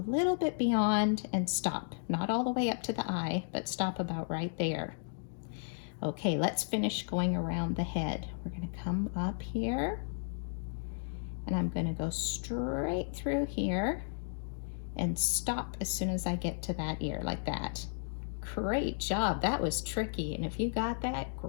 little bit beyond and stop. Not all the way up to the eye, but stop about right there. Okay, let's finish going around the head. We're going to come up here, and I'm going to go straight through here and stop as soon as I get to that ear, like that. Great job. That was tricky, and if you got that,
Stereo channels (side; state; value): right; silent; digital silence